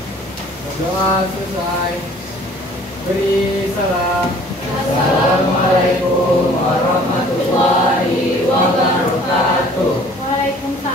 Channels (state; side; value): normal; both; correlation 0.52